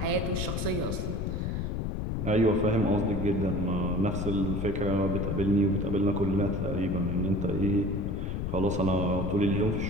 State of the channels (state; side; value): noise; left; rumble, 2 dB below the sound